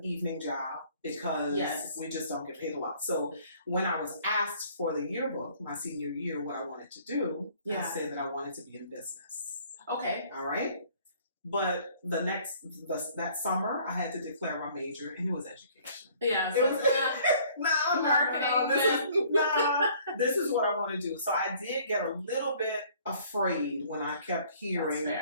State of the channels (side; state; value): both; inverted; correlation -0.57